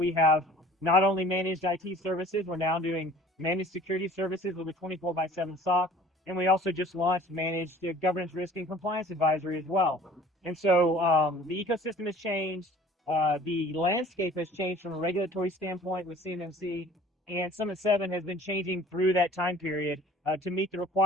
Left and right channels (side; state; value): both; normal; correlation 0.49